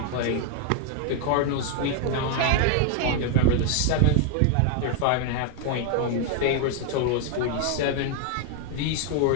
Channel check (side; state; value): both; different; correlation 0.00